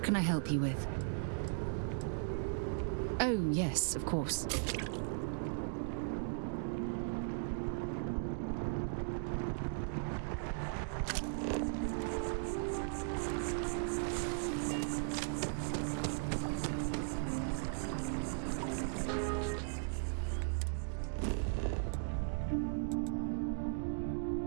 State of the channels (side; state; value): left; silent; digital silence